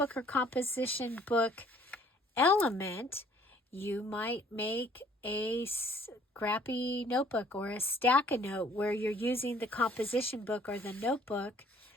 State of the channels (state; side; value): normal; both; correlation 0.58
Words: or composition book element, you might make a scrappy notebook or a stack of note where you're using the composition book or the notebook